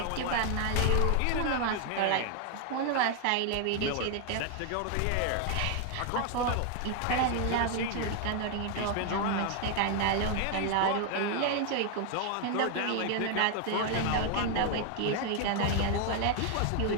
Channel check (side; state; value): both; different; correlation 0.00